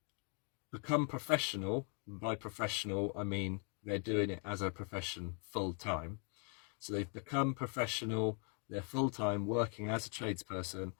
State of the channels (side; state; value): right; quieter; 39.3 dB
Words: become professional. By professional, I mean they're doing it as a profession full time. So they've become professional, they're full time working as a tradesperson,